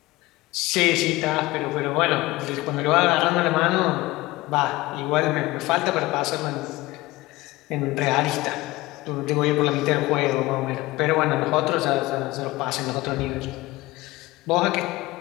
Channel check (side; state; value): right; quieter; 19.6 dB